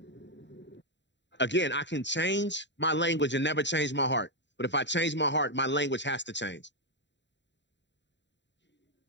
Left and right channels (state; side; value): late; right; 0.52 ms